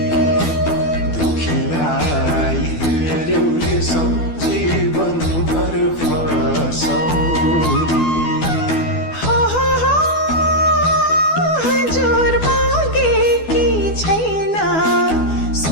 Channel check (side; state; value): right; late; 12 ms